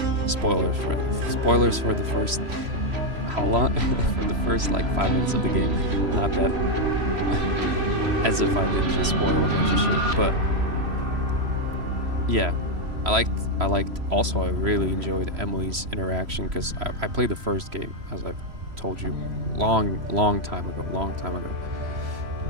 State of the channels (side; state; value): left; late; 3.0 ms